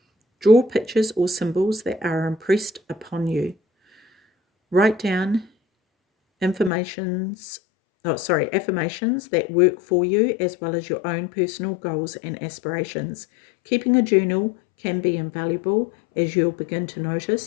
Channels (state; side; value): drops out; right; at 6.7 s